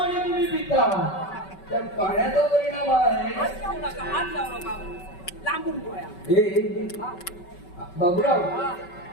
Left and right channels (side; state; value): right; late; 5.3 ms